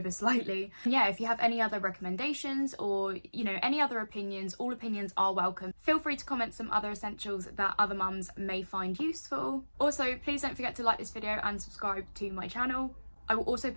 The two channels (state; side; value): inverted; both; correlation -1.00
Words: slightly. And yeah, if you have any other recommendations or, you know, any other opinions, all opinions are welcome. Feel free to comment some other essentials that other mums may find useful. Also, please don't forget to like this video and subscribe to my channel. I will also